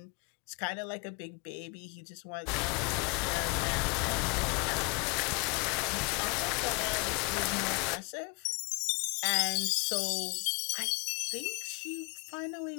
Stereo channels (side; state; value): right; quieter; 32.0 dB